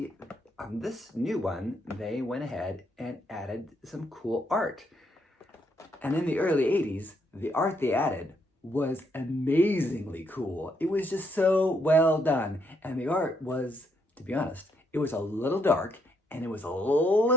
on this new one, they went ahead and added some cool art. And in the early 80s, the art they added was amazingly cool. It was just so well done. And the art was, to be honest, it was a little dark and it was a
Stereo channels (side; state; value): both; normal; correlation 0.74